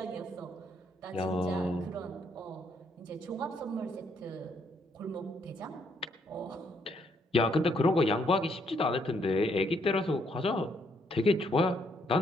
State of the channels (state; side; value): normal; both; correlation 0.72